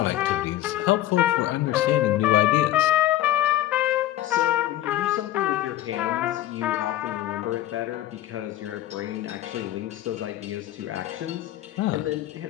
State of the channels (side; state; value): right; quieter; 14.1 dB